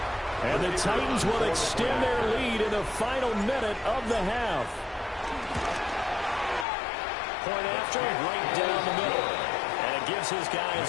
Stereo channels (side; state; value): right; drops out; at 6.7 s